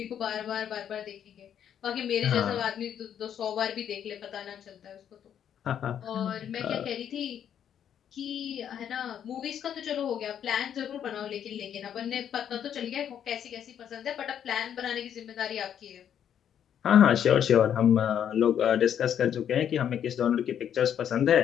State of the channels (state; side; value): quieter; right; 9.3 dB